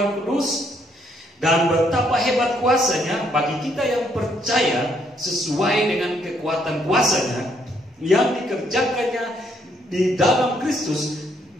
kudus, dan betapa hebat kuasanya bagi kita yang percaya, sesuai dengan kekuatan kuasanya yang dikerjakannya di dalam Kristus,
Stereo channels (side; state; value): both; normal; correlation 0.71